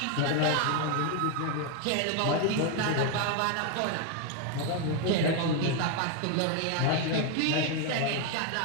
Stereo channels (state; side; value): different; both; correlation 0.01